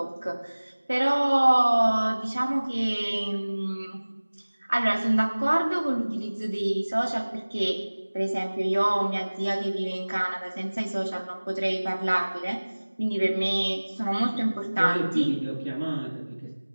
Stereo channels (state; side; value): inverted; both; correlation -1.00